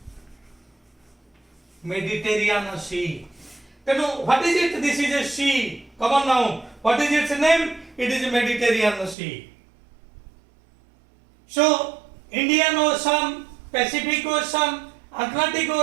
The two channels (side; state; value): left; drops out; at 9.2 s